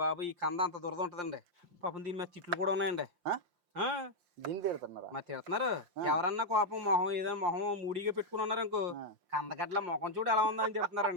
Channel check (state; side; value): late; left; 5.7 ms